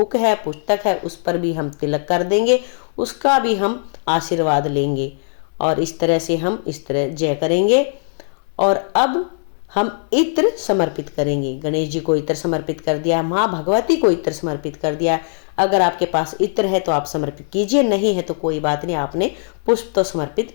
है, पुस्तक है, उस पर भी हम तिलक कर देंगे, उसका भी हम आशीर्वाद लेंगे। और इस तरह से हम इस तरह जय करेंगे। और अब हम इत्र समर्पित करेंगे। गणेश जी को इत्र समर्पित कर दिया, माँ भगवती को इत्र समर्पित कर दिया। अगर आपके पास इत्र है तो आप समर्पित कीजिए, नहीं है तो कोई बात नहीं, आपने पुष्प तो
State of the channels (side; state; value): right; silent; 65 dB below the other